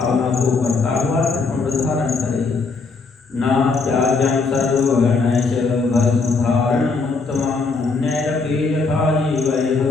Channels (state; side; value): quieter; right; 4.3 dB